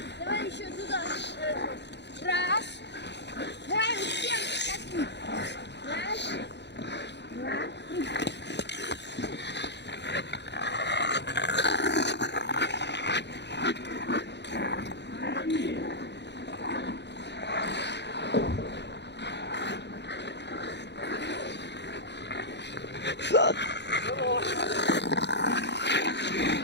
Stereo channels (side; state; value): right; late; 0.50 ms